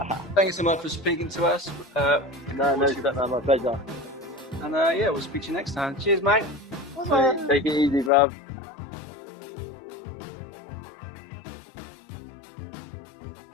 Thank you so much for speaking to us. No, my pleasure. And we'll speak to you next time. Cheers, mate. Take it easy, bruv.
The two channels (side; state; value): right; drops out; at 8.1 s